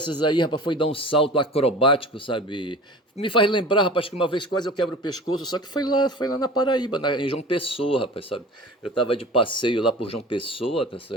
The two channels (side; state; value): both; normal; correlation 0.38